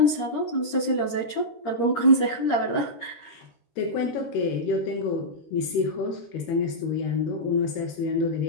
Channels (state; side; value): late; right; 13 ms